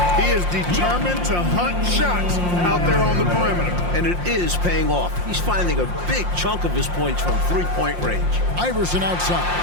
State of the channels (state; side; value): late; left; 5.7 ms